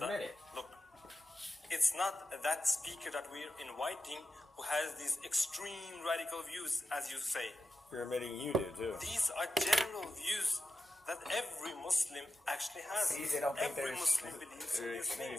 that, look, it's not that speaker that we're inviting who has these extreme radical views, as you say. You're admitting you do too. These are general views that every Muslim actually has. Every Muslim believes in these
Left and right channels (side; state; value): both; normal; correlation 0.91